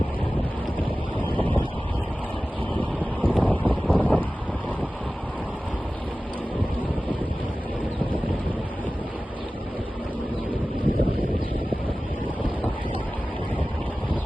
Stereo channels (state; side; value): normal; both; correlation 0.96